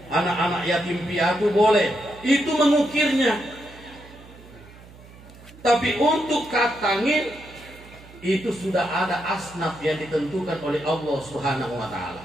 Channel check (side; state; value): right; noise; hum, 21 dB below the sound